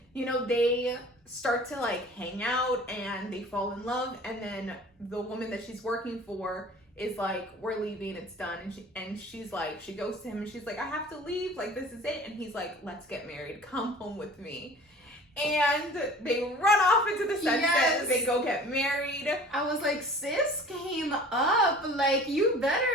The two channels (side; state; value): both; normal; correlation 0.45